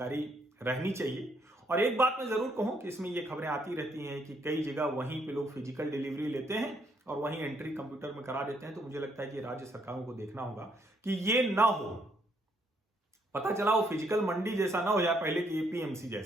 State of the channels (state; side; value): normal; both; correlation 0.71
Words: रहनी चाहिए। और एक बात मैं जरूर कहूं कि इसमें ये खबरें आती रहती हैं कि कई जगह वहीं पे लोग फिजिकल डिलीवरी लेते हैं और वहीं एंट्री कंप्यूटर में करा देते हैं। तो मुझे लगता है कि राज्य सरकारों को देखना होगा कि ये ना हो। पता चला वो फिजिकल मंडी जैसा ना हो जाए पहले की एपीएमसी